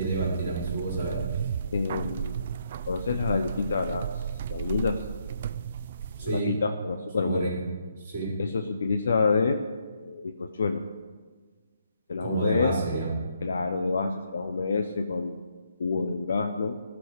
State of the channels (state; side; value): inverted; both; correlation -0.74